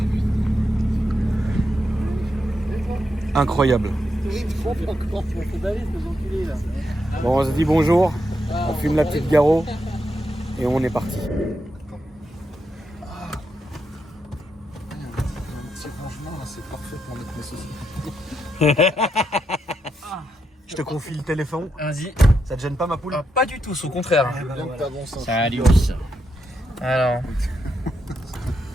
Incroyable. Je trompe encore, je me fais baver, ces enculés là. Bon, on se dit bonjour, on fume la petite Garo et on est parti. Un petit rangement, là, c'est parfait pour mettre mes saucisses. Je te confie le téléphone. Vas-y. Ça te gêne pas, ma poule? Ah, pas du tout, au contraire. Bien que t'avances un peu. Salut. Alors.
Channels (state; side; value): normal; both; correlation 0.83